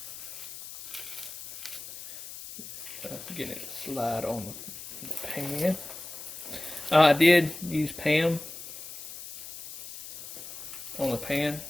Getting it to slide on the pan. I did use Pam on the pan.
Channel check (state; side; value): noise; left; hiss, 11 dB below the sound